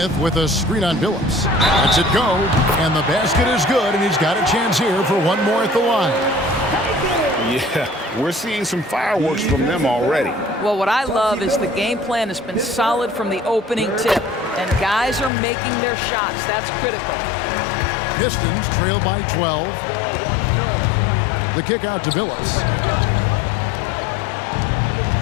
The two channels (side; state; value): right; drops out; at 15.3 s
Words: with a screen on Billups. Lets it go, and the basket is good, and he's got a chance here for one more at the line. Yeah, we're seeing some fireworks from them already. Well, what I love is the game plan has been solid from the opening tip, and guys are making their shots. That's critical. Pistons trail by 12. The kick out to Billups.